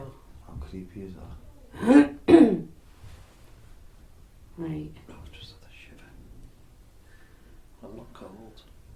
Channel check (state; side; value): identical; both; correlation 1.00